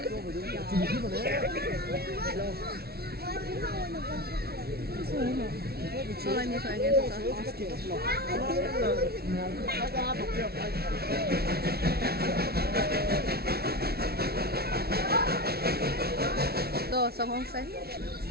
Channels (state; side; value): late; left; 0.45 ms